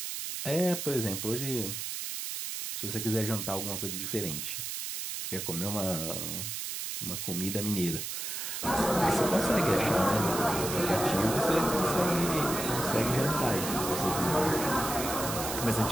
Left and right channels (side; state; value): right; noise; hiss, 5 dB below the sound